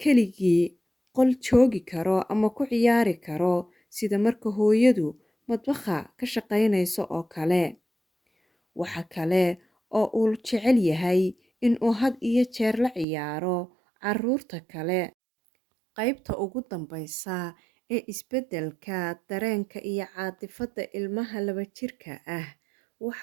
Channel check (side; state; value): left; drops out; at 13.1 s